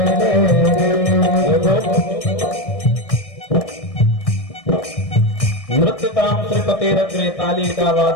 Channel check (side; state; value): right; late; 1.6 ms